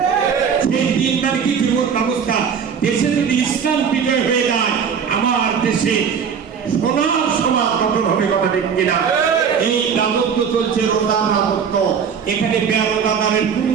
সেই দিন মানে কি জীবন ব্যবস্থা, দেশে যদি ইসলাম বিজয় হয়ে যায় আমার দেশে সোনার সমাজ গঠন হবে কথা ঠিক কিনা? এই রাজত্ব চলছে রোজার রাজত্ব, এখানে বেরোজাদারের কোনো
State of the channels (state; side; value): quieter; left; 6.9 dB